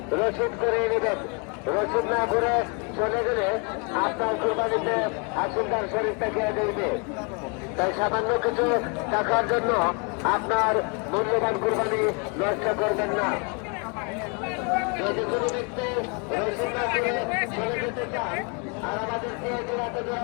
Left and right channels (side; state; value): right; quieter; 35.4 dB